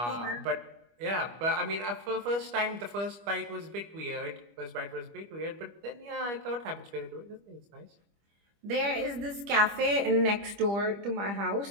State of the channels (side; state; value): left; late; 25 ms